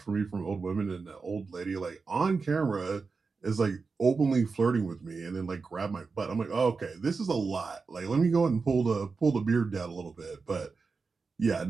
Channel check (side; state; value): left; quieter; 4.6 dB